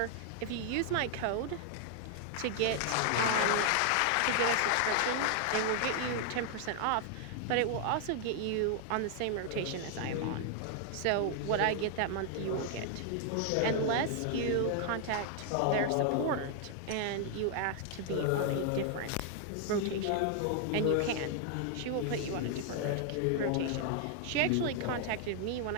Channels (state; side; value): different; both; correlation 0.00